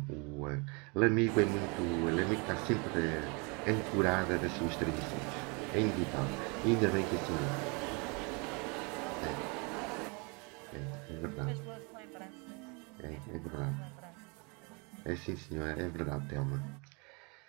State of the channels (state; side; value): quieter; left; 31.5 dB